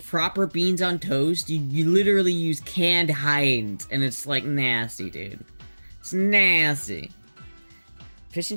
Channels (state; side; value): inverted; both; correlation -1.00